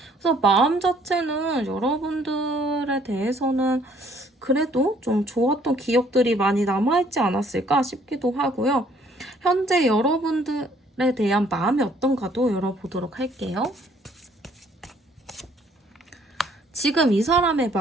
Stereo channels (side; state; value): both; normal; correlation 0.62